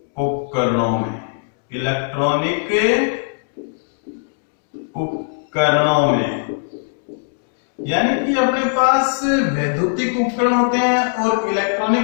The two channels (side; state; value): right; silent; digital silence